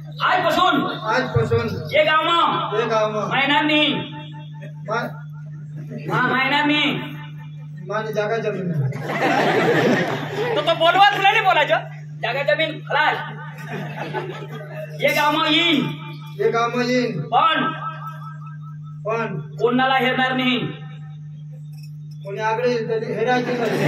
आजपासून ये गाव मग ते गाव मग महिन्यांनी मा- हा महिन्यांनी माने जागा जमीन तो बोलवा तुला नाही बोलायचं जागा जमीन खलास ये गाव मग येईन हे गाव मग येईन. पण पण कोणाला हेरणार नाही कोणी आगळे हेरायचे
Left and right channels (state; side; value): identical; both; correlation 1.00